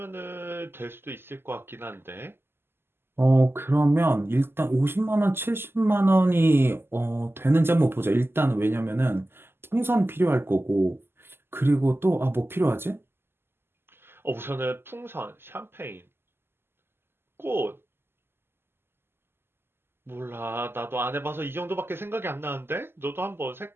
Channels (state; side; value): late; left; 0.11 ms